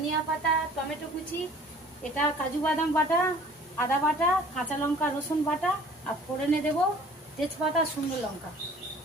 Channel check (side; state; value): both; normal; correlation 0.50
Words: পাতা, টমেটো কুচি, এটা কাজু বাদাম বাটা, আদা বাটা, কাঁচা লঙ্কা রসুন বাটা, আর ফোড়নে দেবো তেজপাতা, শুকনো লঙ্কা।